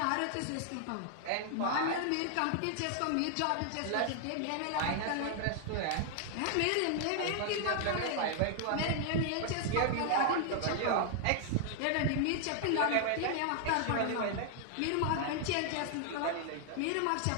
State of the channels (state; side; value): different; both; correlation 0.00